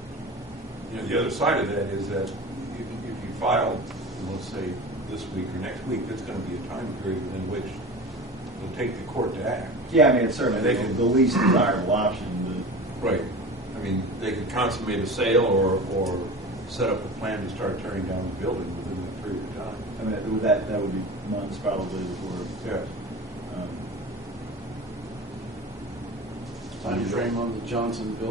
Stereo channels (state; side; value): normal; both; correlation 0.33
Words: And the other side of that is that if you file, let's say this week or next week, there's going to be a time period in which it'll take the court to act. Yeah, I mean, it's certainly They can- the least desirable option. Right. I mean, they could consummate a sale or set up a plan to start tearing down the building within that period of time. I mean, that would be months probably before. Yes. Time frame on the Johnson